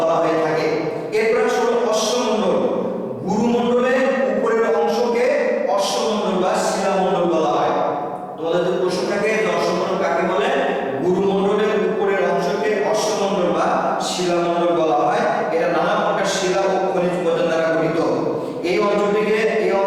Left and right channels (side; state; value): both; identical; correlation 1.00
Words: হয়ে থাকে। এরপর আসলে অশ্বমণ্ডল। গুরুমণ্ডলের উপরের অংশকে অশ্বমণ্ডল বা শিলামণ্ডল বলা হয়। তোমাদের যদি প্রশ্ন থাকে যে অশ্বমণ্ডল কাকে বলে, গুরুমণ্ডলের উপরের অংশকে অশ্বমণ্ডল বা শিলামণ্ডল বলা হয়। এটা নানা প্রকার শিলা ও খনিজ উপাদান দ্বারা গঠিত। এই